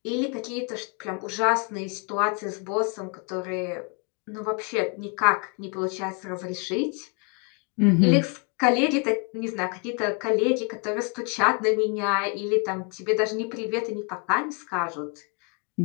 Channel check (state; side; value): quieter; right; 35.2 dB